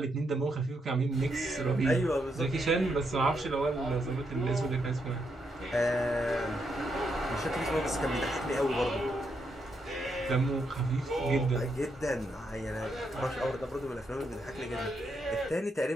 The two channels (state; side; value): normal; both; correlation 0.79